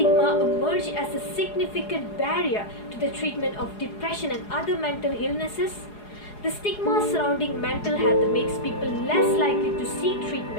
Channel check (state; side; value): late; right; 4.8 ms